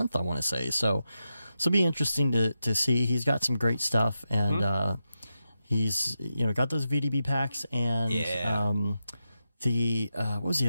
I want to say. So it'll be interesting to see. He's got some great stuff and he's got those VDB packs and what was the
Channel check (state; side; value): inverted; both; correlation -0.88